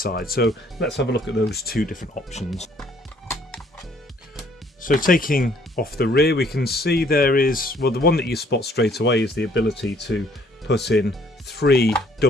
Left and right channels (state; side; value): normal; both; correlation 0.62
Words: So let's have a look at those two different options. So taking off the rear, we can see there is, well, the one that you spot straight away is the ability to put in 3